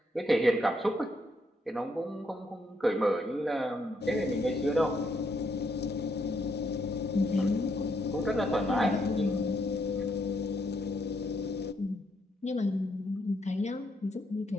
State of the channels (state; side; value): normal; both; correlation 0.75